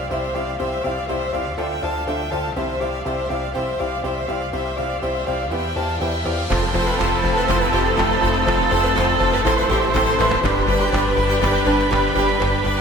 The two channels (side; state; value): both; normal; correlation 0.60